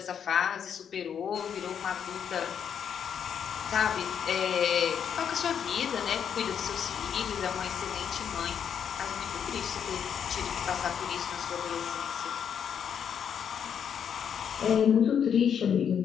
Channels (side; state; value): right; quieter; 8.0 dB